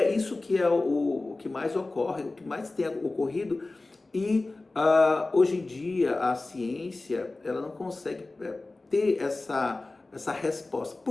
isso que é o que mais ocorre, o que mais tem ocorrido. E hoje em dia a ciência ela não consegue ter essa resposta.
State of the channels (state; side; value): quieter; right; 3.2 dB